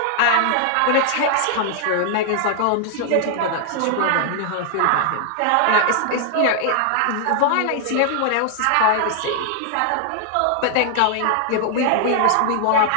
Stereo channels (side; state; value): both; different; correlation 0.00